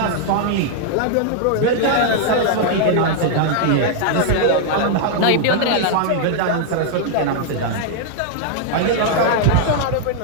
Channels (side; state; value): both; different; correlation 0.00